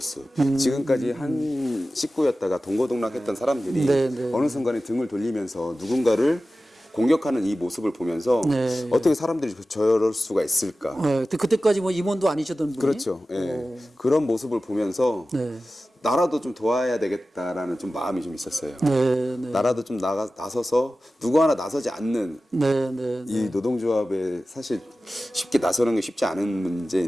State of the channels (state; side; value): normal; both; correlation 0.95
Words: 지금까지 한 식구였다가 동고동락했던 사람들이 어느 순간에 등을 돌리면서 누군가를 공격하는 이 모습을 보면서 어떻게 사람들이 저럴 수가 있을까. 그때까지 뭐 임원도 아니셨던 분이. 그렇죠. 그런 모습을 보면서 나라도 좀 도와야 되겠다라는 좀 마음이 좀 있었어요. 나라도 좀 나서서 누구 하나 나서지 않는 이 노동조합에 사실 쉽게 나서는 게 쉽지 않은